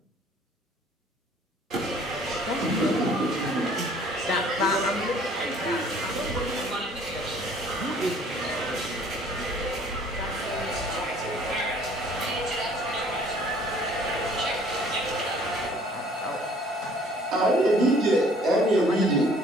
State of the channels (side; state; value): both; normal; correlation 0.55